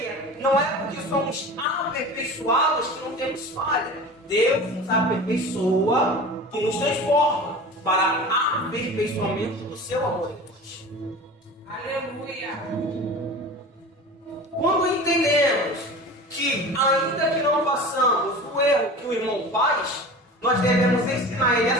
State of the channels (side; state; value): both; normal; correlation 0.36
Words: que não é porque somos aperfeiçoados que não temos falha. Deus nos aperfeiçoa e nos transforma para aperfeiçoamento do seu amor em nós. Aleluia! Quando entendemos que, ainda que não façamos o erro que o irmão faz, nós devemos ensinar ele